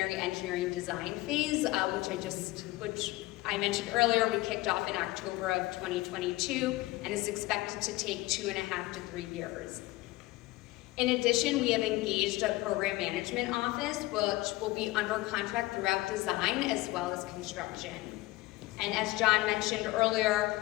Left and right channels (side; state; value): right; quieter; 19.5 dB